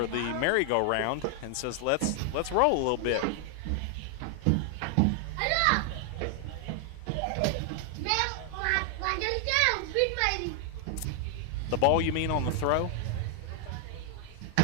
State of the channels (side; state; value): both; different; correlation 0.00